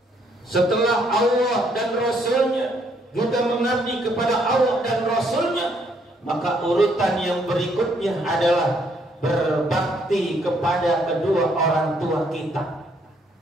Setelah Allah dan Rasulnya, kita mengabdi kepada Allah dan Rasulnya, maka urutan yang berikutnya adalah berbakti kepada kedua orang tua kita.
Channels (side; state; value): both; normal; correlation 0.69